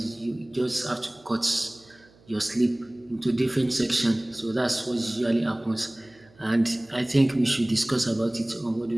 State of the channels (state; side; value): noise; right; hum, 28 dB below the sound